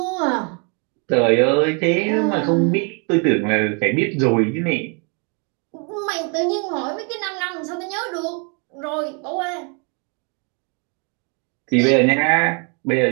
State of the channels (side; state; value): left; quieter; 35.6 dB